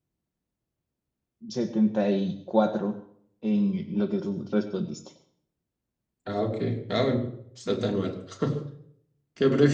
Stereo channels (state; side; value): identical; both; correlation 1.00